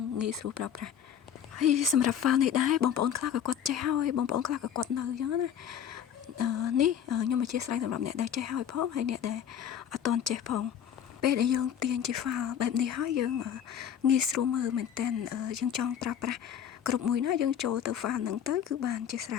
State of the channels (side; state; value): right; quieter; 9.0 dB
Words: ងាយស្រួលប្រើប្រាស់ហើយសម្រាប់ file នេះដែរបងប្អូនខ្លះក៏គាត់ចេះហើយបងប្អូនខ្លះក៏គាត់នៅអញ្ចឹងណានេះខ្ញុំអធិស្ឋានសម្រាប់អ្នកដែលចេះហើយផងហើយអ្នកដែលអត់ទាន់ចេះផងពេលដែលយើងទាញជា file បែបនេះហើយយើងងាយស្រួលមើលមែនតើយើងចង់ប្រើប្រាស់គ្រប់មួយណាយើងចូលទៅ file ហ្នឹងទៅគឺបានជាស្រ